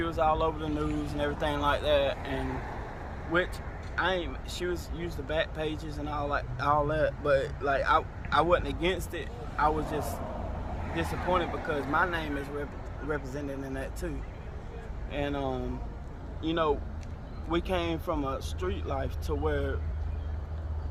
was all over the news and everything like that, and which she was used the back pages and all that, but like I wasn't against it. I was just disappointed because my name is represented in that too. And you know, we came from a street life to where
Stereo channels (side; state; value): both; identical; correlation 1.00